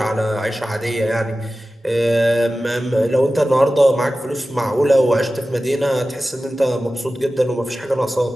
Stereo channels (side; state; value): both; normal; correlation 0.95